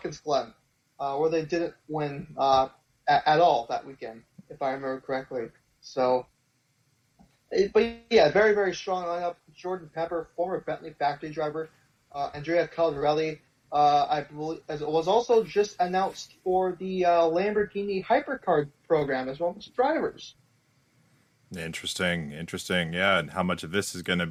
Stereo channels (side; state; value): both; identical; correlation 1.00